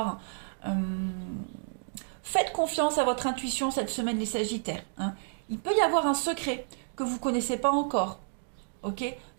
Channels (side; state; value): left; silent; digital silence